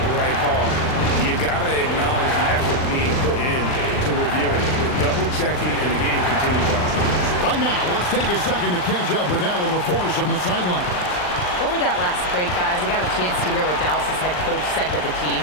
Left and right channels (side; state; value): right; late; 39 ms